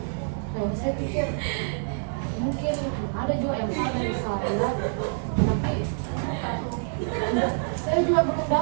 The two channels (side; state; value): left; silent; digital silence